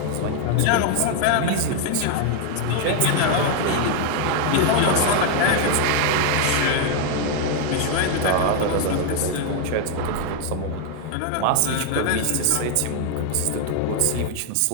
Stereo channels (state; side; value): different; both; correlation 0.01